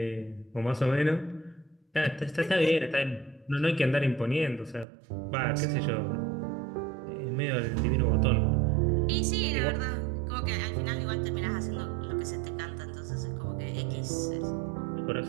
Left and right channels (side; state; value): left; drops out; at 4.9 s